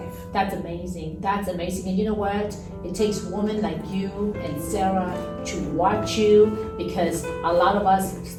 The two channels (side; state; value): both; identical; correlation 1.00